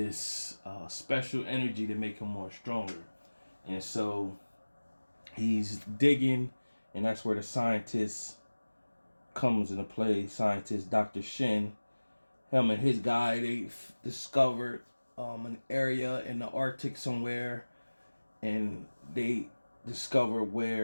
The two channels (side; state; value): both; inverted; correlation -1.00